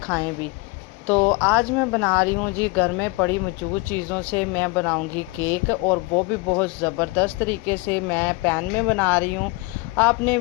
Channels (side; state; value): right; quieter; 24.8 dB